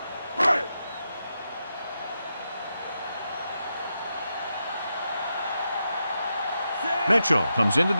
Mitchell comes into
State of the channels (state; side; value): inverted; both; correlation -0.86